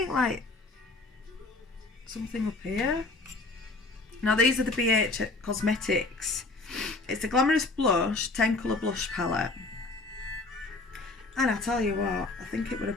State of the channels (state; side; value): quieter; right; 3.4 dB